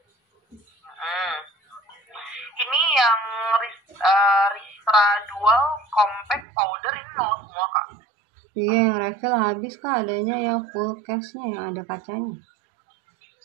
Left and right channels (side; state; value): left; drops out; at 6.5 s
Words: Ini yang Ristra Dual Compact Powder ini 0 semua Kak. Iya, yang refill habis kak, adanya yang full case-nya yang ada kacanya.